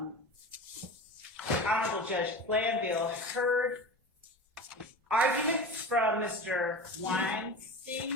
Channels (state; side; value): normal; both; correlation 0.31